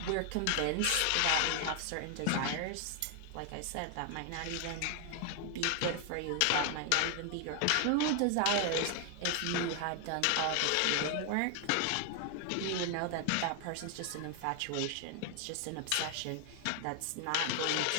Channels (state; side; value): different; both; correlation 0.00